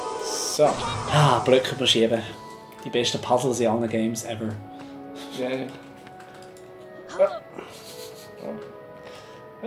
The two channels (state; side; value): identical; both; correlation 1.00